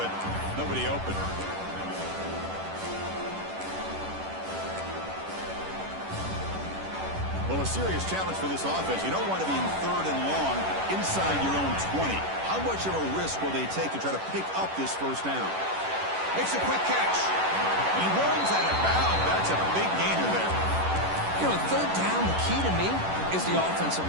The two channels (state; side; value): late; left; 11 ms